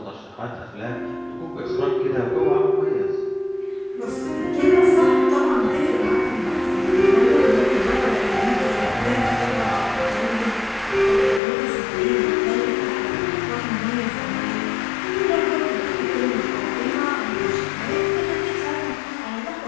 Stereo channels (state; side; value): drops out; right; at 11.4 s